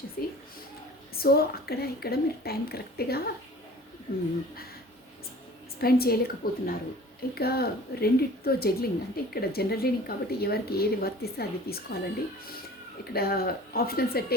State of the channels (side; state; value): both; normal; correlation 0.44